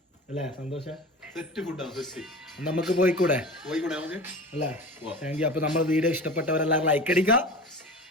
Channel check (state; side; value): normal; both; correlation 0.34